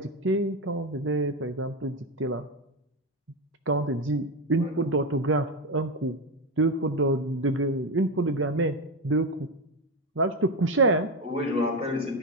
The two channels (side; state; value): both; normal; correlation 0.13